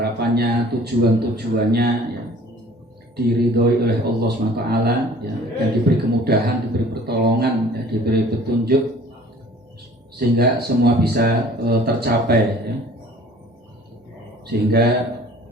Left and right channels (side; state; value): both; normal; correlation 0.49